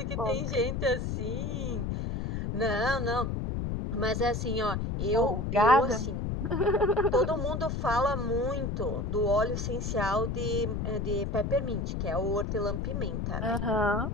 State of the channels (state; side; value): noise; left; rumble, 2 dB below the sound